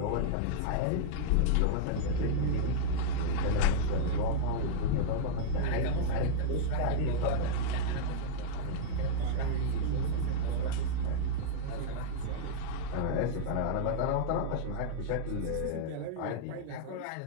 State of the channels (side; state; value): both; different; correlation -0.02